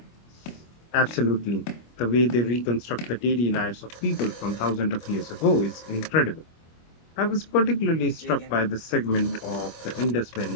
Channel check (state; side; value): late; right; 25 ms